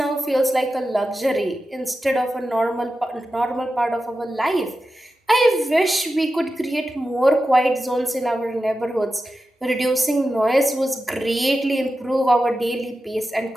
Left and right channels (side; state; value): both; normal; correlation 0.92